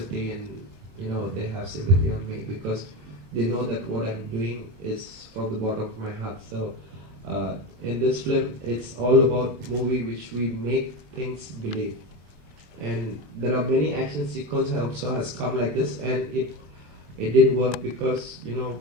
and they have sympathy on me because they know that what I'm doing is from the bottom of my heart. So in this film, it's all about movie which we make things believe. And there are many action sequences also has come like this, and it didn't work because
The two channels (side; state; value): left; late; 20 ms